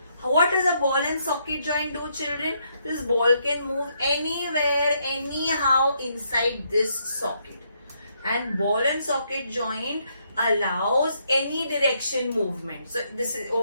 What does a ball and socket joint do, children? This ball can move anywhere, anyhow inside this socket. And ball and socket joint allows any direction movement. So this is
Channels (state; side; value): inverted; both; correlation -0.75